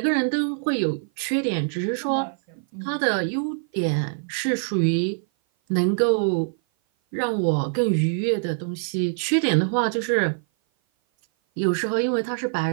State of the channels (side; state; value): left; silent; 56 dB below the other